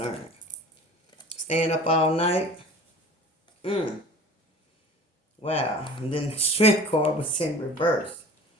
Staying up all night. Wow. And then the Strength card was in reverse.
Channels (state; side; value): normal; both; correlation 0.41